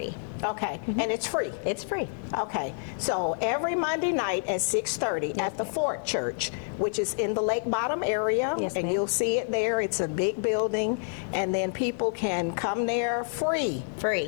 okay, and it's free? It's free. Okay, so every Monday night at 6:30 at the Fort Church, which is in the Lake Bottom area, Yes, and ma'am. you'll see it there. It's a big building, and then people can come there free,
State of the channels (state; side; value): silent; right; digital silence